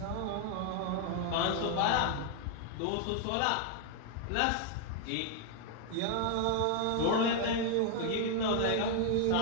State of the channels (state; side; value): different; both; correlation 0.00